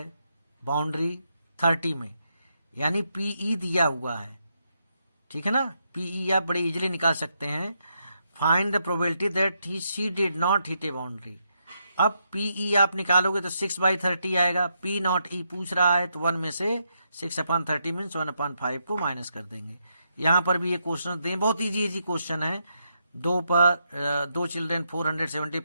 बाउंड्री 30 में, यानी पीई दिया हुआ है, ठीक है ना। पीई आप बड़े इजीली निकाल सकते हैं। Find the probability that she did not hit A boundary. अब पीई आप निकालोगे तो 6/30 आएगा। पी नॉट ई पूछ रहा है तो 1 में से 6/30 मीन्स 1/5 को माइनस कर देंगे। यहाँ पर भी ये क्वेश्चन दें, बहुत इजी क्वेश्चन है। 2 चिल्ड्रेन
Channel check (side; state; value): both; inverted; correlation -0.80